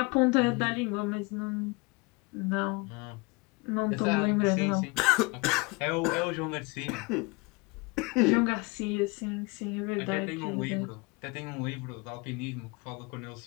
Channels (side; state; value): right; quieter; 27.3 dB